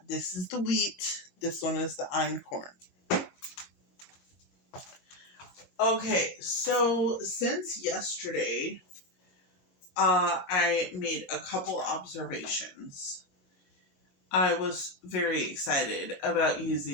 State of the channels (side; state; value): right; late; 22 ms